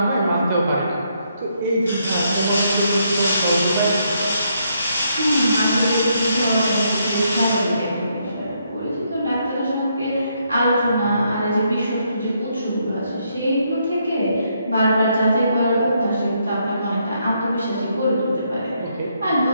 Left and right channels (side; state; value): both; inverted; correlation -0.75